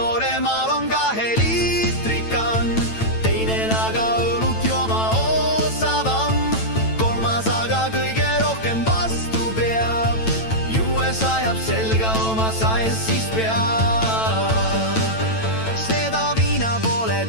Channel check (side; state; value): right; late; 9.0 ms